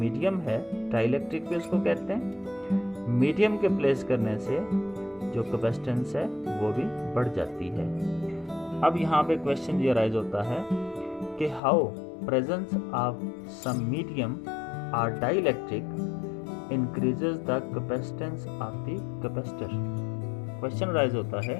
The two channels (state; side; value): drops out; right; at 11.6 s